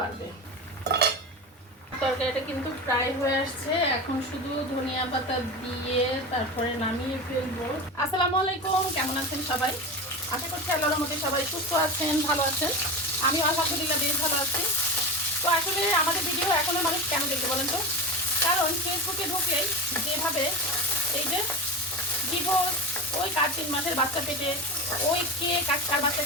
তরকারিটা কিন্তু প্রায় হয়ে আসছে, এখন শুধু ধনিয়া পাতা দিয়ে তারপরে নামিয়ে ফেলবো। আসসালামু আলাইকুম, কেমন আছেন সবাই? আশা করছি আল্লাহর মধ্যে সবাই সুস্থ আছেন, ভালো আছেন। আমিও আলহামদুলিল্লাহ বেশ ভালো আছি। তো আসলে আমাদের ভিডিও এখনো মানুষ কেন দেখতে বলেন তো? কারণ ফেসবুকে ঢুকে যেভাবে এই যে ডিভোর্স, ওই কার 3 মাসের বাচ্চা পেটে, ওই কে কার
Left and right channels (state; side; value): normal; both; correlation 0.24